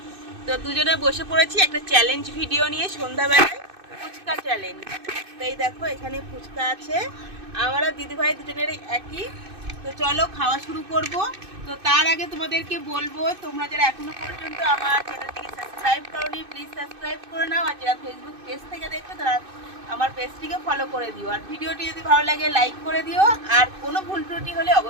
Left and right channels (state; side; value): late; left; 2.6 ms